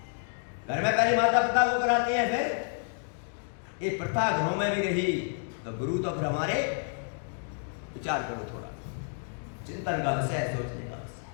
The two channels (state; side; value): silent; right; 58 dB below the other